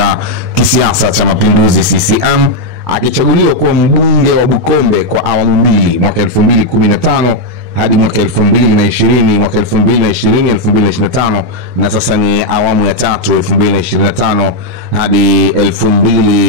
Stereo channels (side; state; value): left; late; 24 ms